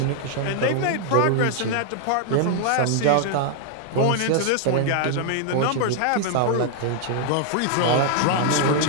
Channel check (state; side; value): different; both; correlation 0.00